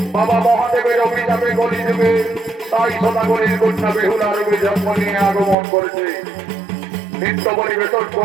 বাবা মহাদেবের অভিশাপে গলি দেবে সাইসনগরের কন্যা বেহুলার জন্ম নিয়ে আগমন করেছে। নিত্য পরিবেশন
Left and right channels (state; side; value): drops out; left; at 5.6 s